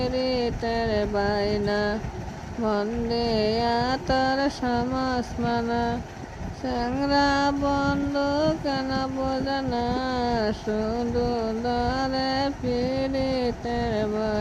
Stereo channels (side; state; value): both; identical; correlation 1.00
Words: বাইনা মন দিয়া তার সমস্মনা স্যাংরা বন্ধ কেন বোঝে না শুধু দ্বারে পীড়িতের